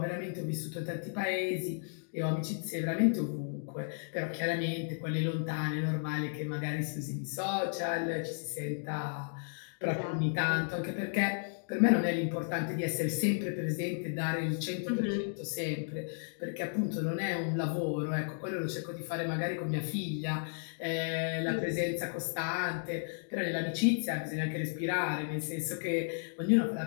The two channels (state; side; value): silent; right; digital silence